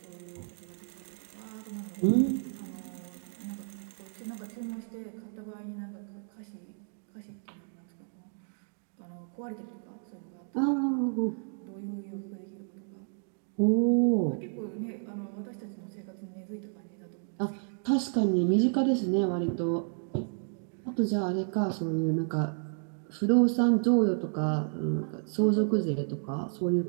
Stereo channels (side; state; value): left; silent; 57 dB below the other